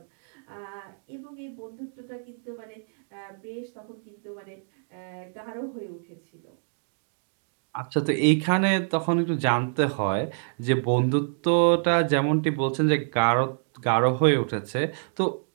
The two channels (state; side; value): silent; left; digital silence